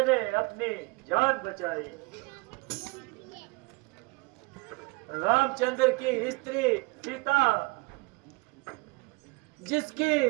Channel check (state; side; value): quieter; left; 26.5 dB